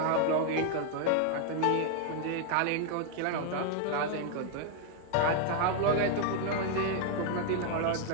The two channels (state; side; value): different; both; correlation 0.00